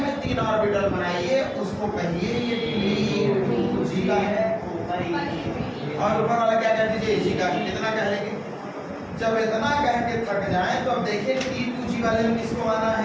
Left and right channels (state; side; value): identical; both; correlation 1.00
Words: में 3 ऑर्बिटल बनाइए, उसको कहिए ये T2g का है और ऊपर वाला क्या कह दीजिए Eg का। इतना कह लेंगे। जब इतना कह के थक जाए तो अब देखिए T2g वाले में किसको आना